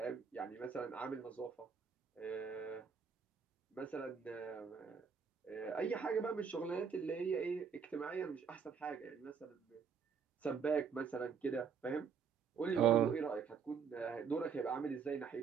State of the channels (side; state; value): left; quieter; 6.3 dB